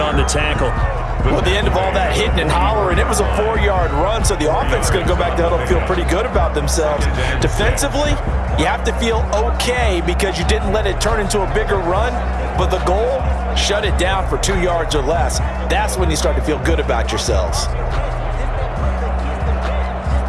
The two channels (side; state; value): both; identical; correlation 1.00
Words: the tackle. Well, at the end of all that hitting and hollering, it was a 4-yard run, so the offense is going to go back there and feel pretty good about themselves. Defensively, you have to feel okay because you didn't let it turn into a bigger run, but the goal, shut it down for 2 yards or less. That's when you start to feel good about yourselves.